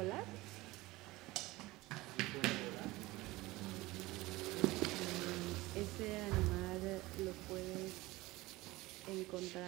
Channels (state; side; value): quieter; left; 19.9 dB